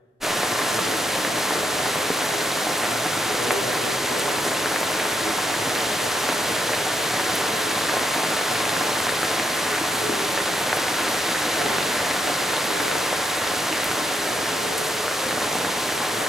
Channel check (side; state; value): both; normal; correlation 0.79